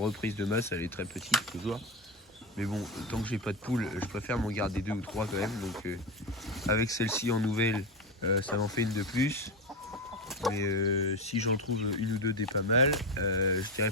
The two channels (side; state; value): both; normal; correlation 0.16